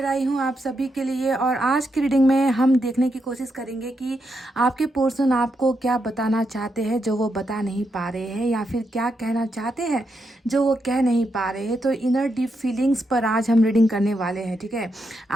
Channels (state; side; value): normal; both; correlation 0.83